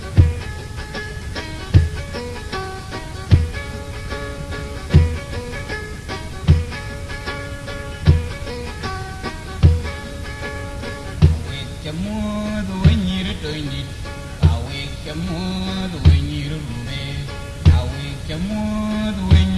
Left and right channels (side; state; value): both; identical; correlation 1.00